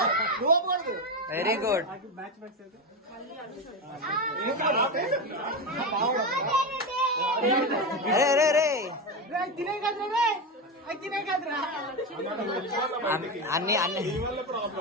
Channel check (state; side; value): normal; both; correlation 0.15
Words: వెరీ గుడ్. అరే అరే అరే అన్ని అన్ని